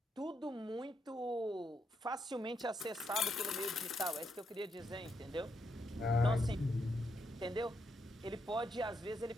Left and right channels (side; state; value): both; normal; correlation 0.79